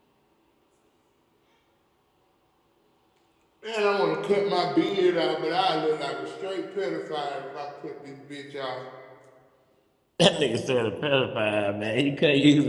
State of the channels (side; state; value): both; identical; correlation 1.00